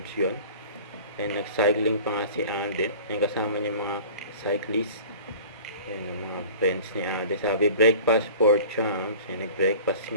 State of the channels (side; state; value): both; inverted; correlation -0.43